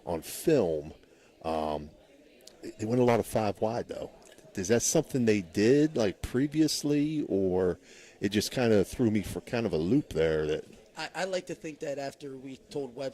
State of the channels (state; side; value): identical; both; correlation 1.00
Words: on film. They went a lot of 5 wide, though. Is that something they did like previously, or it just kind of threw me for kind of a loop there? That I like to think that after we told